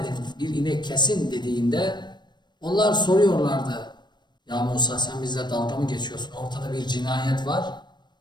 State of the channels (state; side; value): late; right; 0.22 ms